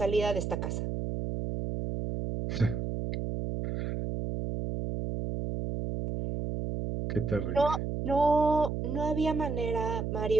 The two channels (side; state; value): right; noise; hum, 3 dB below the sound